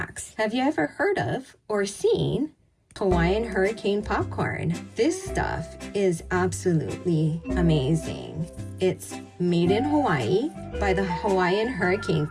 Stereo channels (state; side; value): identical; both; correlation 1.00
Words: Have you ever heard of or seen Hawaiian hurricane popcorn? This stuff is absolutely amazing. It's made in Hawaii by the Hawaiian Hurricane